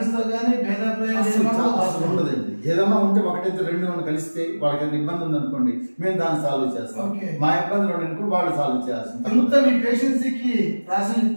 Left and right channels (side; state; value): both; inverted; correlation -1.00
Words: తో కానీ భేదాభిప్రాయం ఉండదండి. ఏదన్నా ఉంటే ఒకటైతే రెండు మనం కలిస్తే వాళ్ళకి ఏదైనా ఇబ్బంది ఉంది అనుకోండి, మేము దాన్ని సాల్వ్ చేస్తాం. మా ఇబ్బందులు అనుకో వాళ్ళు సాల్వ్ చేయాల్సింది. అంతా మీ పేషెన్స్ కి రాసి